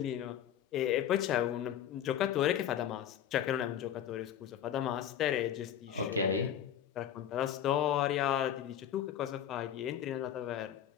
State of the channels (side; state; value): right; quieter; 9.9 dB